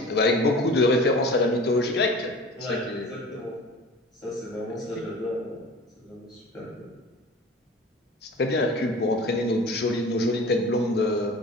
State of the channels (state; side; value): normal; both; correlation 0.39